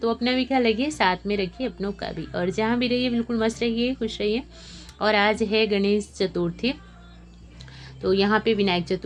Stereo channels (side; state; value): both; identical; correlation 1.00